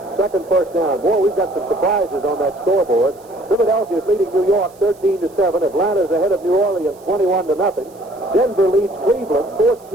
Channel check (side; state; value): right; noise; hiss, 29 dB below the sound